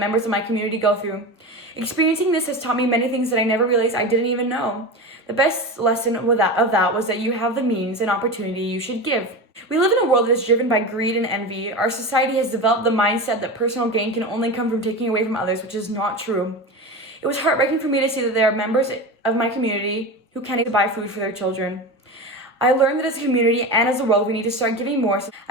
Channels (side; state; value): both; normal; correlation 0.25